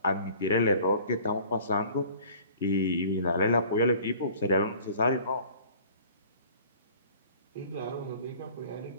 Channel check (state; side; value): inverted; both; correlation -0.49